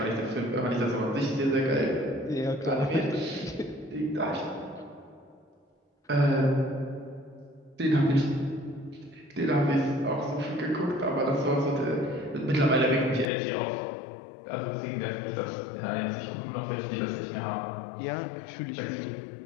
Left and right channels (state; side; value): drops out; right; at 13.3 s